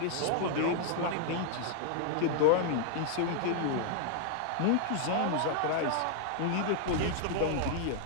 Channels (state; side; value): different; both; correlation 0.00